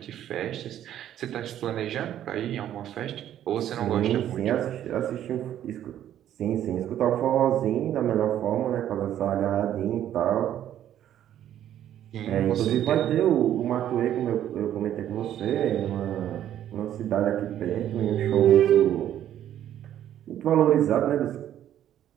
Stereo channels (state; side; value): quieter; left; 11.2 dB